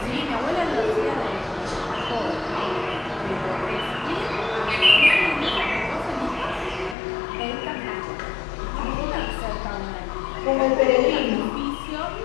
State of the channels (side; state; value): right; drops out; at 7.0 s